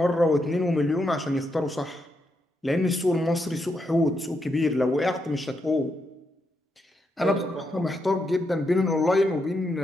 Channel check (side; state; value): both; normal; correlation 0.81